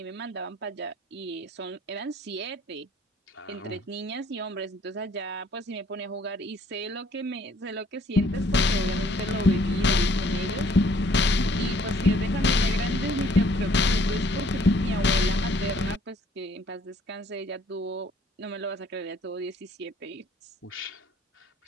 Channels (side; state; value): both; normal; correlation 0.60